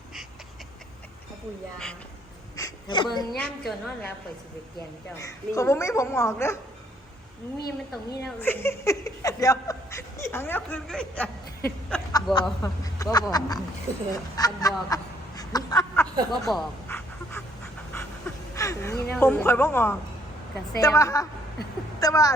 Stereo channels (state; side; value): normal; both; correlation 0.65